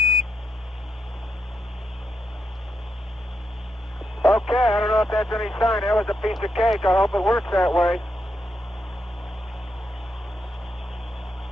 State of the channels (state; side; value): normal; both; correlation 0.82